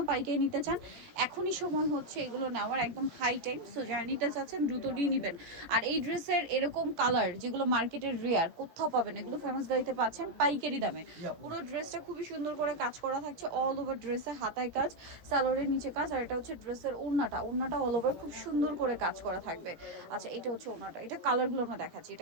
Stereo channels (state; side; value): late; left; 17 ms